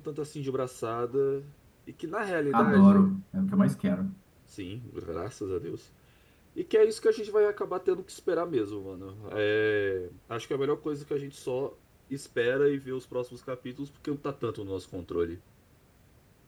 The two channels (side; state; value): both; identical; correlation 1.00